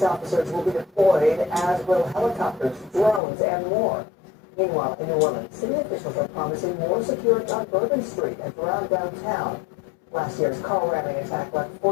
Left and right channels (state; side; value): drops out; right; at 3.2 s